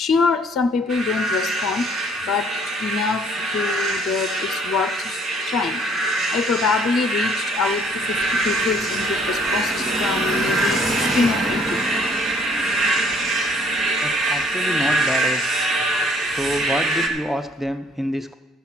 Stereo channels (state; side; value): normal; both; correlation 0.60